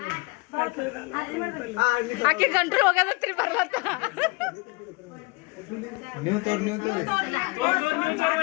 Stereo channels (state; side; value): quieter; right; 27.6 dB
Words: ಆಕೆ ಗಂಟ್ರು ಹೋಗದತ್ರಿ ಬರ್ಲತ್ತ ನೀವು